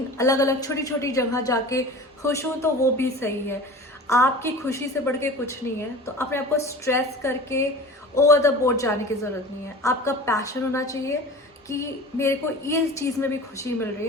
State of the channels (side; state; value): both; normal; correlation 0.37